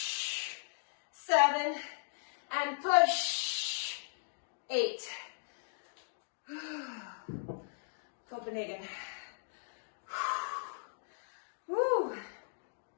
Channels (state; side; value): silent; right; digital silence